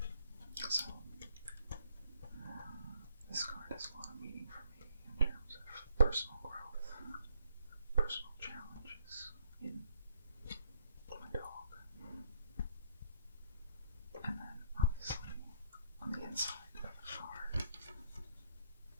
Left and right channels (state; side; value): inverted; both; correlation -0.68